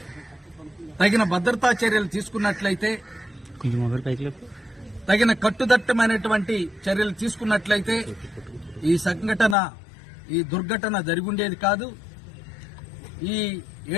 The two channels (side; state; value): right; drops out; at 9.6 s